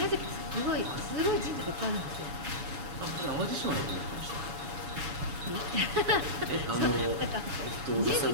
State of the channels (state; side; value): late; left; 7.0 ms